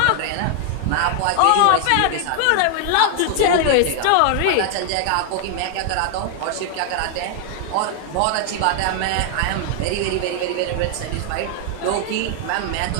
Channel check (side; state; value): both; different; correlation 0.00